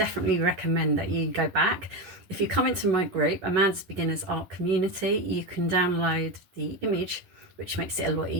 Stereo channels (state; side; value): late; left; 11 ms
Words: recommend that you go back. If you come into my group, Amanda's Beginners Art Community, you can download the image, which makes it a lot